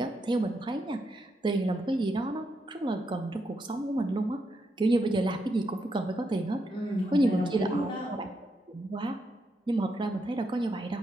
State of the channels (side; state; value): both; normal; correlation 0.81